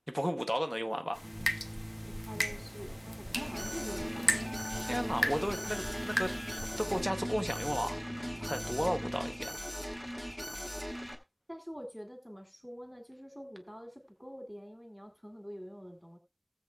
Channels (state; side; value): identical; both; correlation 1.00